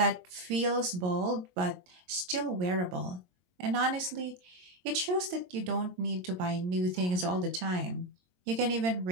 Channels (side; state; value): left; late; 22 ms